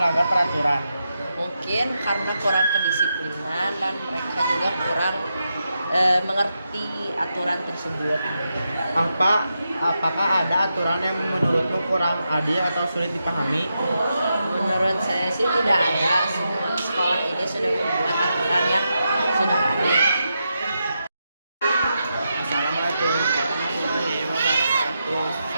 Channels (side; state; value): both; inverted; correlation -0.86